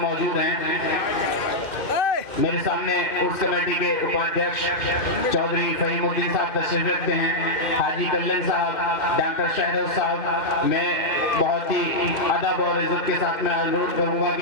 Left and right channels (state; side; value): late; right; 2.1 ms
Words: मौजूद हैं, मेरे सामने उर्स कमेटी के उपाध्यक्ष चौधरी फहीमुद्दीन साहब तशरीफ रखते हैं, हाजी कल्लन साहब, डॉक्टर शहरोज साहब। मैं बहुत ही अदब और इज्जत के साथ में अनुरोध करूंगा